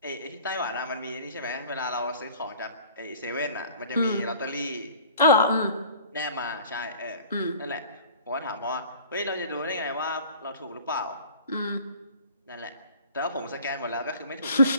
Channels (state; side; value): inverted; both; correlation -0.47